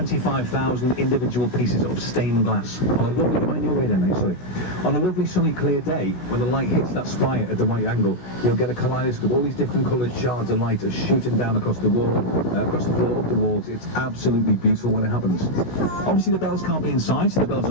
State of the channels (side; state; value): right; late; 16 ms